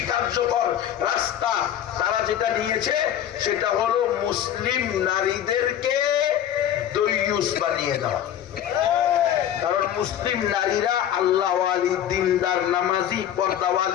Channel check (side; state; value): right; quieter; 10.5 dB